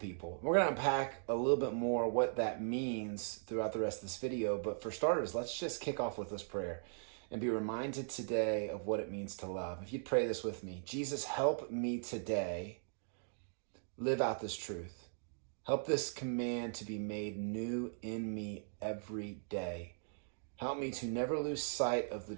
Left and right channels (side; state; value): left; silent; digital silence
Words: We're going to unpack a little bit more what that means throughout the rest of this video. But for starters, let's just kick off with this prayer and be reminded today of what it means to love. If you'd pray this with me: Jesus, help me today live out this truth. Help this command to be made new in me every day. Help me to never lose sight of the